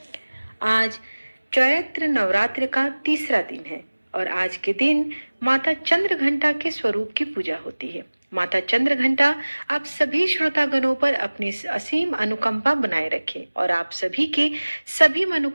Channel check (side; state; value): both; inverted; correlation -1.00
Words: आज चैत्र नवरात्र का तीसरा दिन है और आज के दिन माता चंद्र घंटा के स्वरूप की पूजा होती है। माता चंद्र घंटा आप सभी श्रोतागणों पर अपनी असीम अनुकंपा बनाए रखे और आप सभी की सभी